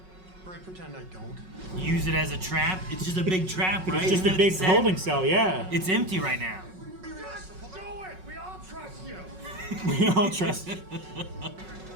Right, pretend I don't. Use it as a trap? It's just a big trap, right? It's just a big holding cell, yeah. It's empty right now. Do it! We all trust you! We all trust you.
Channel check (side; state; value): left; late; 5.4 ms